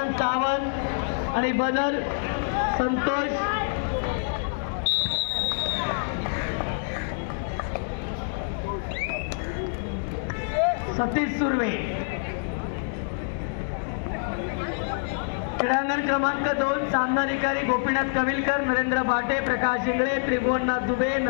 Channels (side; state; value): right; silent; digital silence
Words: सावंत आणि बदर संतोष सतीश सुर्वे। क्रीडांगण क्रमांक 2 सामनाधिकारी गोपीनाथ कविलकर, नरेंद्र भाटे, प्रकाश इंगळे, त्रिभुवननाथ दुबे,